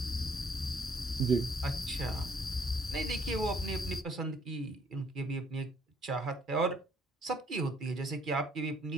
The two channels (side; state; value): both; normal; correlation 0.64